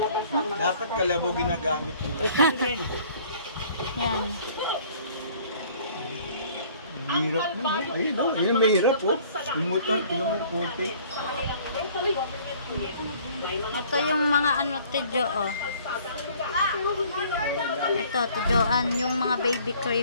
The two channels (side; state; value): both; inverted; correlation -0.55